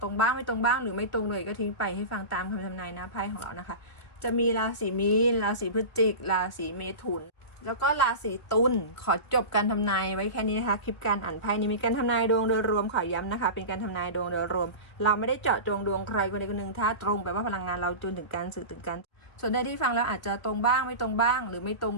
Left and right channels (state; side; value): late; right; 1.8 ms